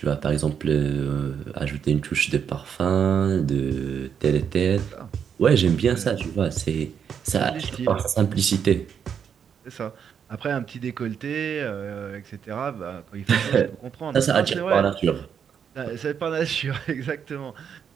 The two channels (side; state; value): left; quieter; 7.6 dB